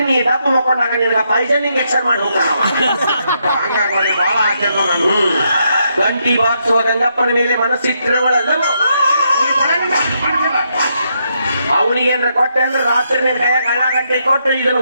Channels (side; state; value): both; inverted; correlation -0.78